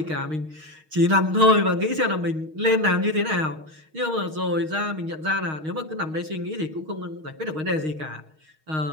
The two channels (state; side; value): late; left; 6.4 ms